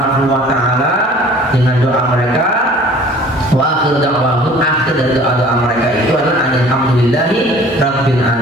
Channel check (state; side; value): normal; both; correlation 0.49